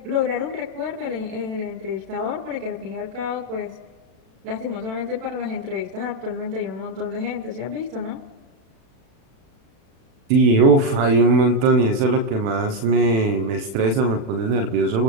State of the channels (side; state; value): left; late; 36 ms